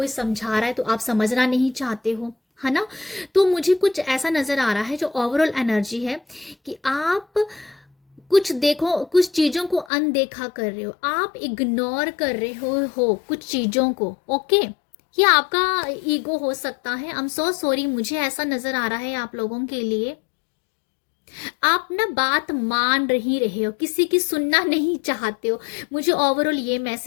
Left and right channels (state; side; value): drops out; right; at 9.9 s